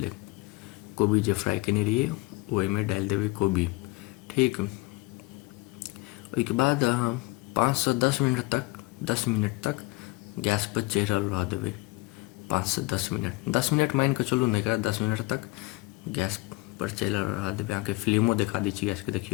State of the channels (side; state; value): right; quieter; 23.4 dB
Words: कोबी जे फ्राइ केने रहिए ओहिमे डालि देबै कोबी, ठीक। ओहिके बाद अहाँ 5 सँ 10 मिनट तक गैसपर चढ़ल रहऽ देबै। 5 सँ 10 मिनट मानि कऽ चलू ने, एकरा 10 मिनट तक गैसपर चढ़ल रहऽ देबै। अहाँके फ्लेमो देखा दै छी गैसके,